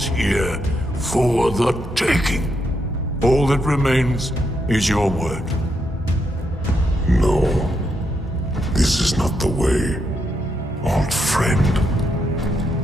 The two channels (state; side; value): normal; both; correlation 0.80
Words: here, for the taking. All that remains is your word. No, this is not the way, old friend.